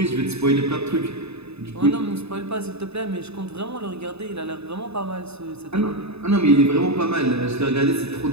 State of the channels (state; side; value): late; left; 0.79 ms